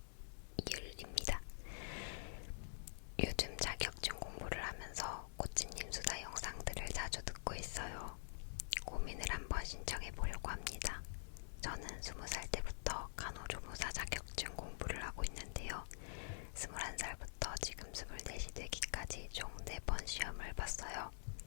이율입니다. 요즘 자격증 공부를 하면서 꽃집님 수다 영상들을 자주 듣고 있어요. 고민을 한번 신청해 보려고 합니다. 저는 20살 때부터 간호조무사 자격증 공부를 하고 있는데요. 21살부터 지금 24이 되기까지 총 4번 시험을 봤어요.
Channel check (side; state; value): right; silent; digital silence